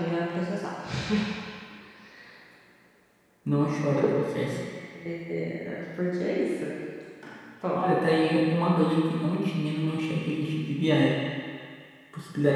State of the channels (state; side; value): identical; both; correlation 1.00